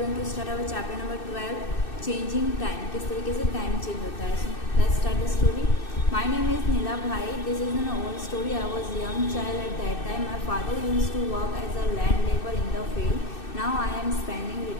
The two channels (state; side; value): late; right; 2.6 ms